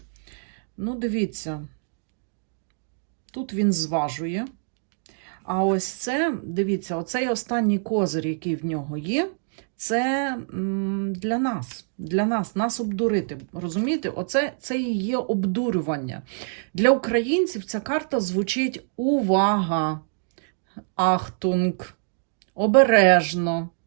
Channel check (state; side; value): silent; left; digital silence